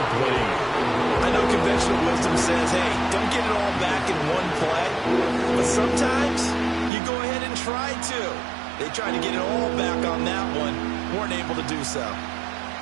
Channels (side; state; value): left; drops out; at 6.9 s